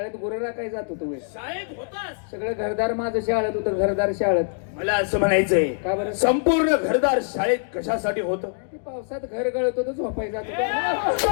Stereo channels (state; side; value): silent; right; digital silence